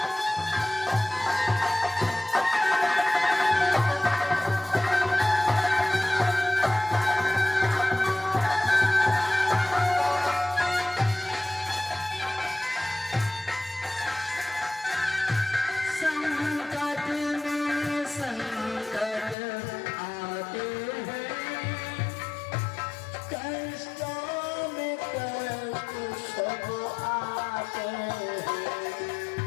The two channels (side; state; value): right; drops out; at 19.4 s